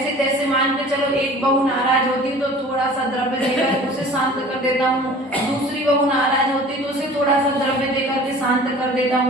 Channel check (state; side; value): normal; both; correlation 0.45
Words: तैसे मान के चलो एक बहू नाराज होती तो थोड़ा सा द्रव्य देकर उसे शांत कर देता हूँ, दूसरी बहू नाराज होती तो उसे थोड़ा सा द्रव्य देकर के शांत कर देता